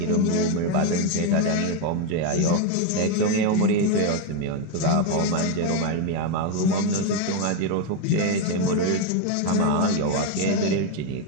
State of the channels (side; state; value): both; different; correlation 0.02